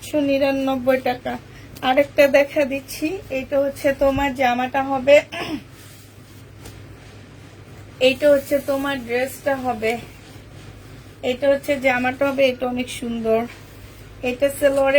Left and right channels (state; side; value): identical; both; correlation 1.00